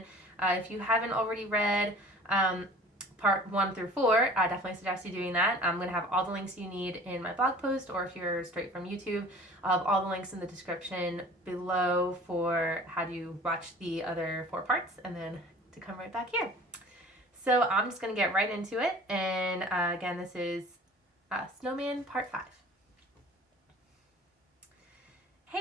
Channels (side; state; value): both; normal; correlation 0.45